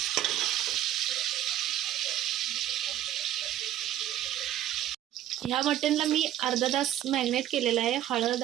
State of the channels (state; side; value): quieter; left; 12.2 dB